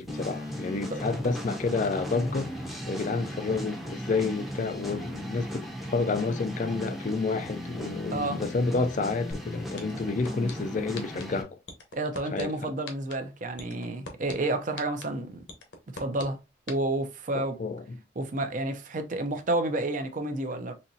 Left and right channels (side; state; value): both; normal; correlation 0.41